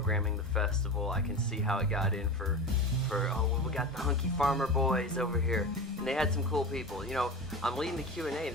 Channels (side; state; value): both; normal; correlation 0.28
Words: the festival. I can see how it got in for oh, well, we got the hunky farmer boys over here. And they had some cool people. You know, I'm leading the Q&A.